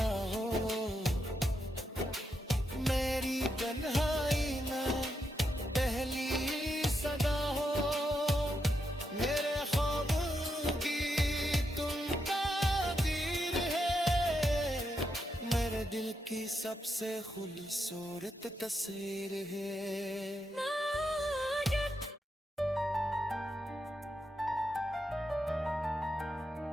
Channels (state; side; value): normal; both; correlation 0.83